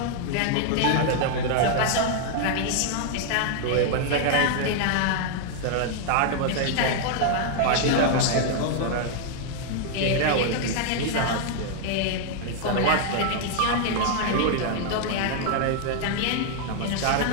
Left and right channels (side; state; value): both; different; correlation 0.00